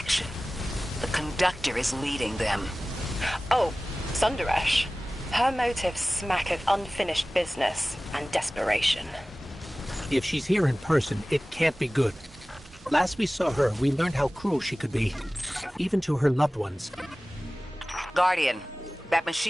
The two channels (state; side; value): normal; both; correlation 0.97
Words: The Conductor is leading them. Oh, Sundaresh. Her motives smack of unfinished business and desperation. If she's here in person, it can't be good. Last we saw her, we learned how cruel she could be, even to her loved ones. Guardian, that